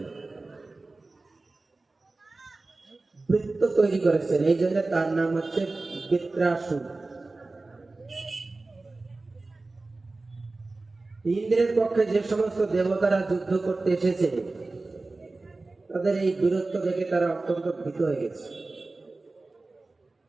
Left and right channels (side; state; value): left; quieter; 3.3 dB